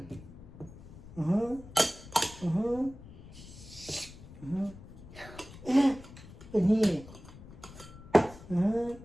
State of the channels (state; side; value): noise; left; rumble, 17 dB below the sound